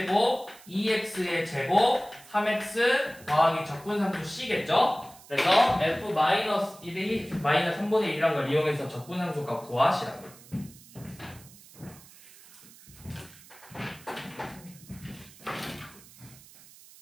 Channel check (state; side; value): noise; right; hiss, 22 dB below the sound